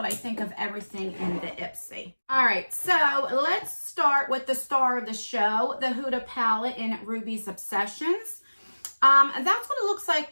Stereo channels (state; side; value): inverted; both; correlation -1.00